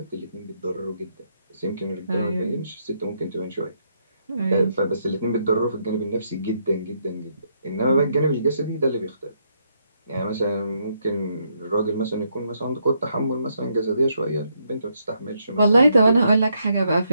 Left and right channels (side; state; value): both; inverted; correlation -0.76